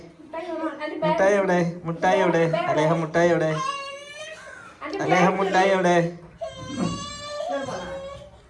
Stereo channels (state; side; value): identical; both; correlation 1.00